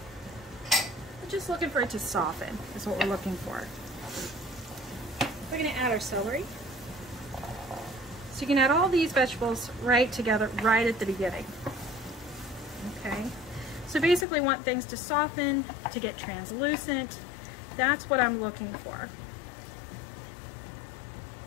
We're just looking for it to soften is what we're looking for. We're going to add our celery. So you can add all these vegetables right together right at the beginning. Okay. So basically want things to soften, to get translucent. That's what I'm looking for.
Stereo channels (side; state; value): right; drops out; at 14.2 s